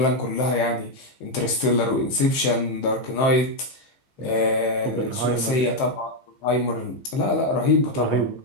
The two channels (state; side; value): late; right; 15 ms